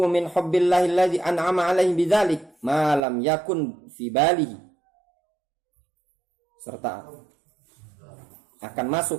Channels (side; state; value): left; drops out; at 3.0 s